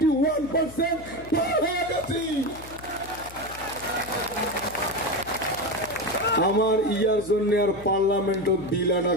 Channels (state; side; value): noise; left; hum, 18 dB below the sound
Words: হয়ে গেছি। আমার ইয়ার জন্য আর পার্লামেন্টত বিল আনা